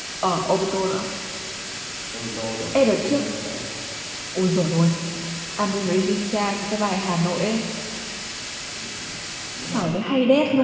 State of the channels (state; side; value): identical; both; correlation 1.00